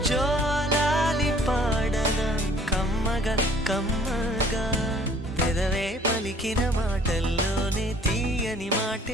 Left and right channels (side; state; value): both; normal; correlation 0.56